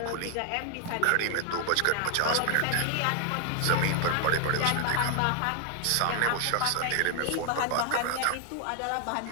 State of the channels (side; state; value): both; different; correlation 0.00